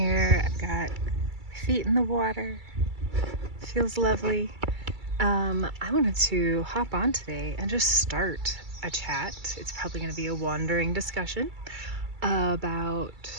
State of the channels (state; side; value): late; left; 2.3 ms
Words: I've got my feet in the water. Feels lovely. I wanted to hop on today and just start a chat. It's probably going to be a wandering discussion about